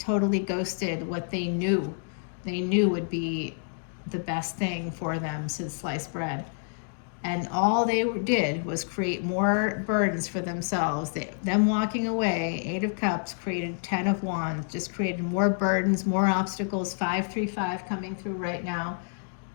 ghosted what they knew would be the best thing for them since sliced bread. And all they did was create more burdens for themselves. Them walking away, Eight of Cups, created 10 of Wands, just created more burdens, more obstacles. 535 coming through right now.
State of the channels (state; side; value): silent; right; digital silence